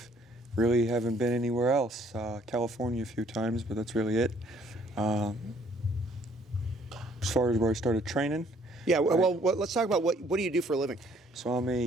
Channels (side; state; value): both; normal; correlation 0.62